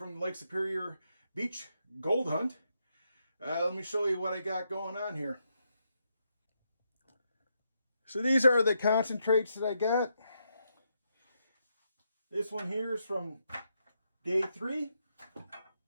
the Lake Superior Beach Gold Hunt. Let me show you what I got going on here. So these are the concentrates that I got. This one here is from day 3.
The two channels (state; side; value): inverted; both; correlation -0.80